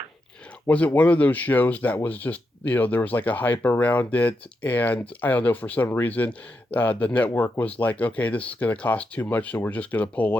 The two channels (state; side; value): normal; both; correlation 0.85